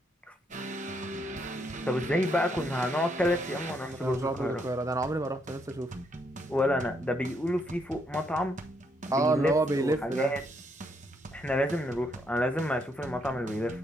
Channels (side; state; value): both; normal; correlation 0.74